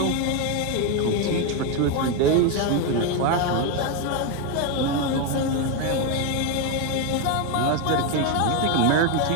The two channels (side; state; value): both; different; correlation 0.02